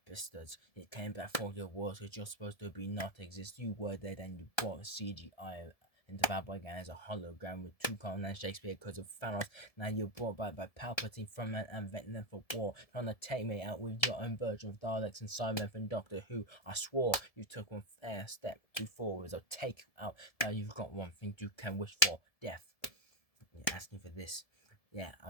pistons. It came back for your words, which you're supposed to be not exist. You were dead and you brought CGI into Bad Boy Gang as a hologram with two Colin and Shakespeare because of Thanos. Now you're brought back by Palpatine, Frontman and Vecna for war, trying to take me out with your own version of Daleks and Cybermen from Doctor Who. I swore you took one fair step too forward, so take you out. Now you've got one thing you can wish for, death. You're asking for this. Yeah, I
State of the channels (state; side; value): late; right; 1.7 ms